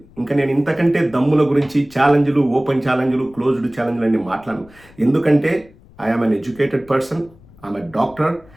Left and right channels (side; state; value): left; noise; rumble, 25 dB below the sound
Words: ఇంకా నేను ఇంతకంటే దమ్ముల గురించి ఛాలెంజ్లు, ఓపెన్ ఛాలెంజ్లు, క్లోజ్డ్ ఛాలెంజ్లు అన్ని మాట్లాడను. ఎందుకంటే I'm an educated person, I'm a doctor.